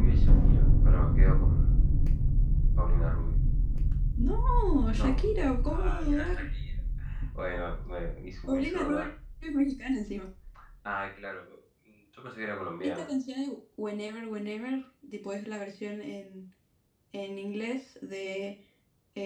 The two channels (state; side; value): identical; both; correlation 1.00